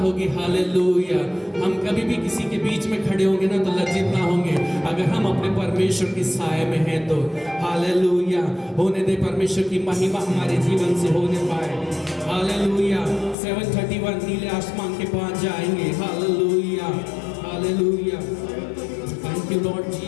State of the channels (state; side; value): drops out; right; at 13.4 s